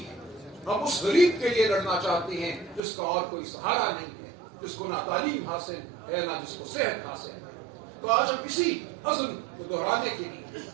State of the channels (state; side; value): drops out; left; at 2.8 s